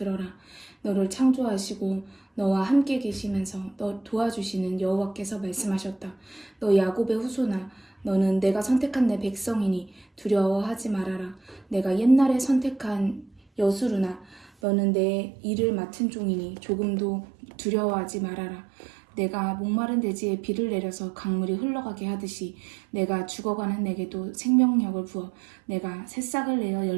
너를 창조하시고 너와 함께 계시면서 너 도와주시는 여호와께서 말씀하셨다. 너 야곱의 후손아 너는 내가 선택한 내 백성이니 두려워하지 말아라. 내가 옛날에 선택한 여수르나 너는 내 일을 맡은 종이니 조금도 두려워하지 말아라. 내가 목마른 대지에 비를 내려서 강물이 흘러가게 하듯이 내가 죽어가는 내게도 생명력을 부어 내가 새싹을 내어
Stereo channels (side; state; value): left; drops out; at 14.5 s